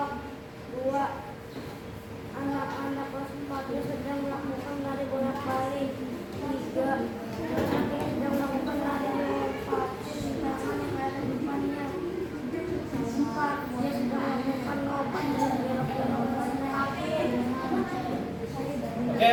2. Anak-anak kelas 4 sedang melakukan lari bolak-balik. 3. Anak ini sedang melakukan lari melompat. Tangan yang ada di depannya. 4. Dia sedang melakukan lompat dan belok-belok.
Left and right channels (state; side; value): identical; both; correlation 1.00